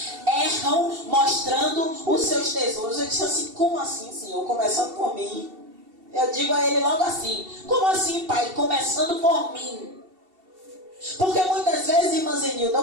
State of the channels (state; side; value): late; left; 2.7 ms